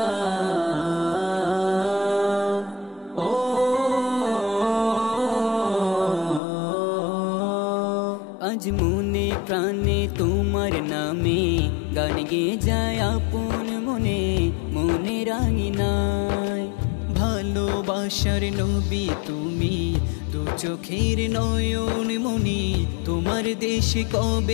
আজ মনে প্রাণে তোমার নামে গান গেয়ে যায় আপন মনে, মনে রাঙিনায় ভালোবাসার নবী তুমি, দু চোখের নয়ন মনি। তোমার দেশে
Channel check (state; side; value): drops out; right; at 6.4 s